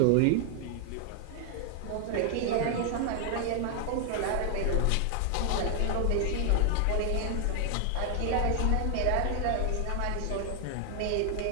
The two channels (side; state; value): both; different; correlation 0.00